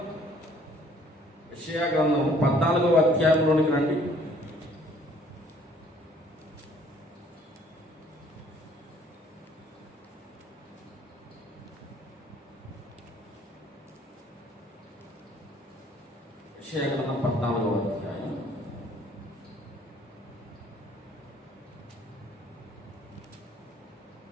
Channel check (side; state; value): both; normal; correlation 0.59